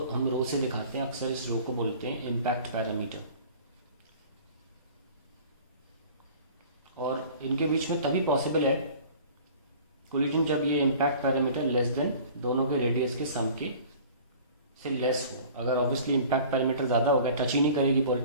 हम रो से दिखाते हैं। अक्सर इस रो को बोलते हैं इम्पैक्ट पैरामीटर। और इनके बीच में तभी पॉसिबल है कोलिजन जब ये इम्पैक्ट पैरामीटर लेस देन दोनों के रेडियस के सम के से लेस हो। अगर ऑब्वियसली इम्पैक्ट पैरामीटर ज़्यादा हो गया, टच ही नहीं करेगी बॉल,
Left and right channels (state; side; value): inverted; both; correlation -0.46